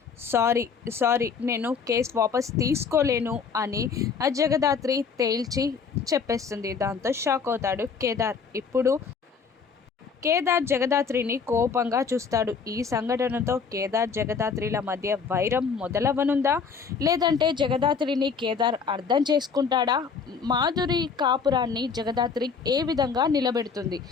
సారీ నేను కేసు వాపస్ తీసుకోలేను అని జగదాత్రి తేల్చి చెప్పేస్తుంది. దాంతో షాక్ అవుతాడు కేదార్. ఇప్పుడు కేదార్ జగదాత్రిని కోపంగా చూస్తాడు. ఈ సంఘటనతో కేదార్ జగదాత్రిల మధ్య వైరం మొదలవనుందా, లేదంటే జగదాత్రిని కేదార్ అర్థం చేసుకుంటాడా, మాధురి కాపురాన్ని జగదాత్రి ఏ విధంగా నిలబెడుతుంది,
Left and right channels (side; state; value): right; quieter; 5.7 dB